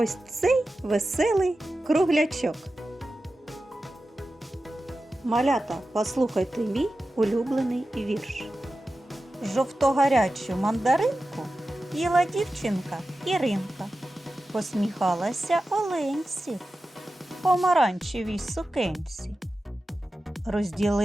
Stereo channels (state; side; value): normal; both; correlation 0.93